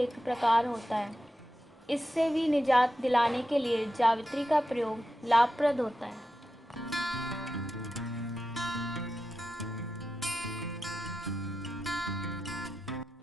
प्रकार होता है। इससे भी निजात दिलाने के लिए जावित्री का प्रयोग लाभप्रद होता है।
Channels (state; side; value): normal; both; correlation 0.90